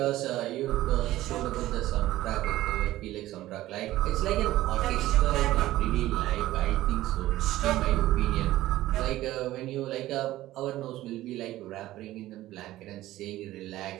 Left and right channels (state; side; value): quieter; left; 15.5 dB